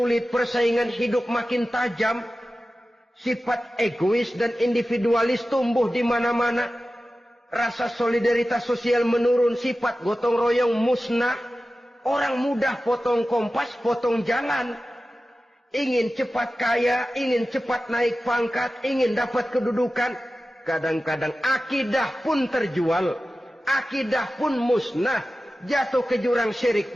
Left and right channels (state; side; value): normal; both; correlation 0.94